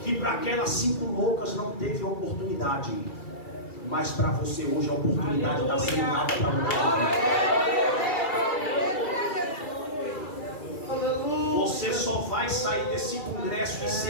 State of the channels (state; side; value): late; right; 2.3 ms